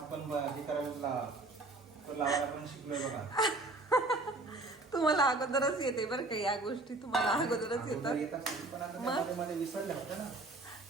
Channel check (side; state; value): left; quieter; 3.0 dB